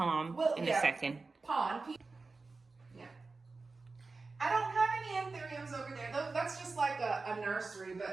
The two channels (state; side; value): quieter; left; 3.9 dB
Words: in a second. Pond. Yeah. I don't have any anthuriums over there. That's just like a nursery,